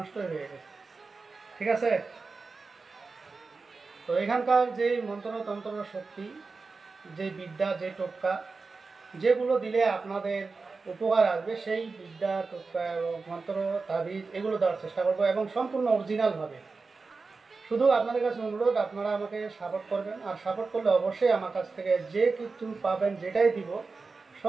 হয়ে গেছে। ঠিক আছে। তো এখানকার যে মন্ত্রতন্ত্র শক্তি, যে বিদ্যা, যে টোটকা, যেগুলো দিলে আপনাদের উপকার আসবে, সেই বিদ্যা, টোটকা এবং মন্ত্র, তাবিজ এগুলো দেওয়ার চেষ্টা করবো এবং সম্পূর্ণ অরিজিনালভাবে। শুধু আপনাদের কাছে অনুরোধ, আপনারা আমাকে সাপোর্ট করবেন। আর সাপোর্ট করলে অবশ্যই আমার কাছ থেকে যে কিছু পাবেন, যেটাই দিব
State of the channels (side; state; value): left; quieter; 4.2 dB